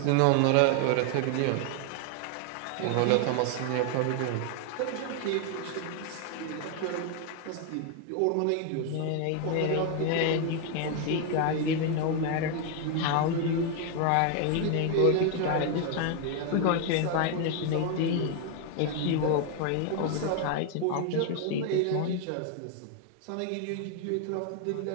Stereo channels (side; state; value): both; different; correlation 0.01